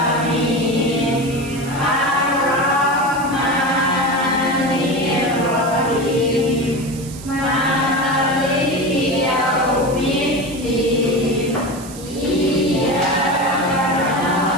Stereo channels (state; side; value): noise; right; hiss, 16 dB below the sound